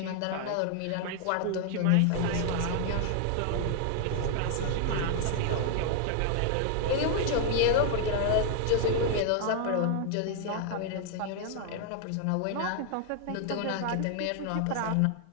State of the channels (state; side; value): different; both; correlation 0.00